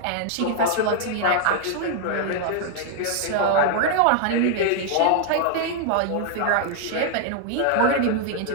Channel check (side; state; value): both; different; correlation 0.00